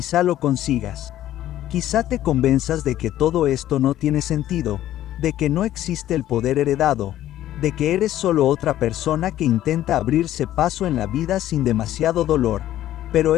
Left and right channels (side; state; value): right; quieter; 13.0 dB